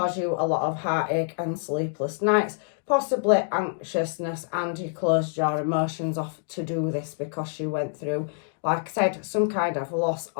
you a lot of heartache and sleepless nights, possibly anxiousness, and you closed your emotions off to do this because you went through, like I said, some kind of loss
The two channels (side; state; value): right; silent; digital silence